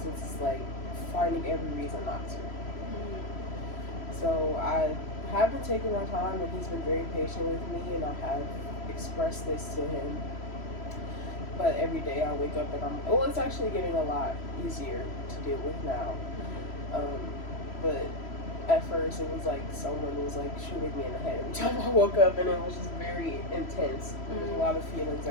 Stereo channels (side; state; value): right; late; 3.0 ms